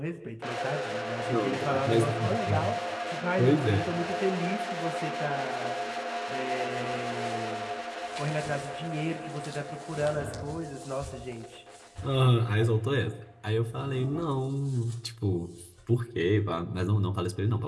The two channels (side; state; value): both; identical; correlation 1.00